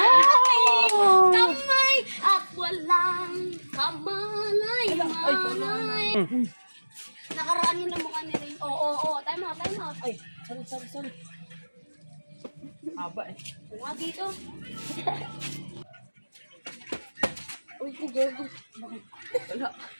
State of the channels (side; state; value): both; inverted; correlation -1.00